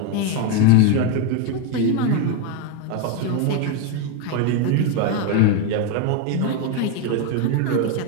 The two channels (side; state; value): both; different; correlation 0.02